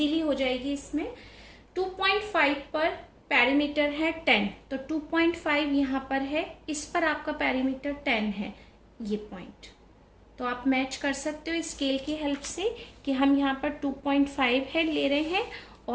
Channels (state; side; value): identical; both; correlation 1.00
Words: हो जाएगी इसमें. 2.5 पर पैरामीटर है 10, तो 2.5 यहाँ पर है, इस पर आपका पैरामीटर 10 है, ये पॉइंट. तो आप मैच कर सकते हो स्केल की हेल्प से कि हम यहाँ पर 2.5 है ले रहे हैं